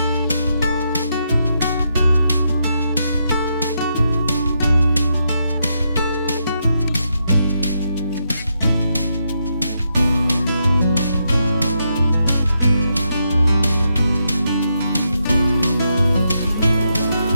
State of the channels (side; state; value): both; inverted; correlation -0.81